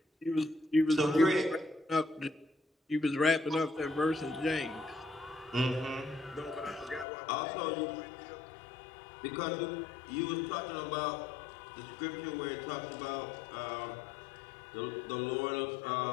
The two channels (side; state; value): right; drops out; at 7.1 s